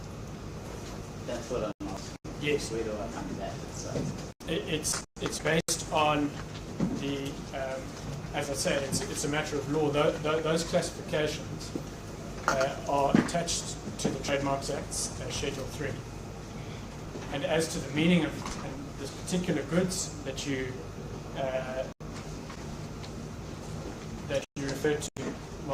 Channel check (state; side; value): identical; both; correlation 1.00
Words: what I'm asking. Yes. Where do I find that? It's based on the, as I say, it's a matter of law. Those classifications are attached to the Trademarks Act's Schedule 3. And as to the meaning of this particular goods that you refer to,